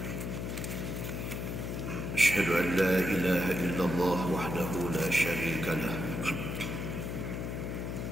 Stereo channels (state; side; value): noise; left; hum, 4 dB below the sound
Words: Asyhadu an la ilaha illallah wahdahu la syarika lah.